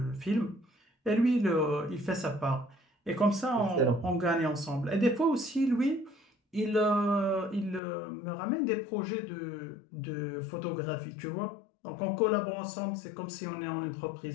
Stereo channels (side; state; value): right; drops out; at 7.8 s